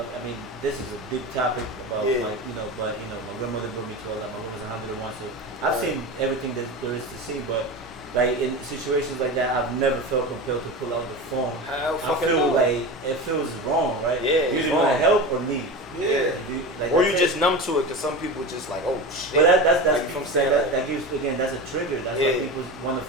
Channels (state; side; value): normal; both; correlation 0.26